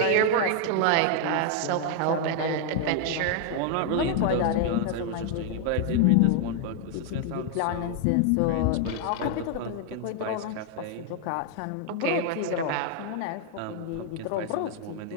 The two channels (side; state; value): both; different; correlation 0.00